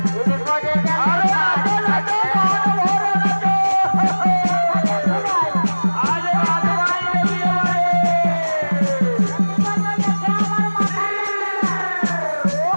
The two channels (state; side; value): inverted; both; correlation -1.00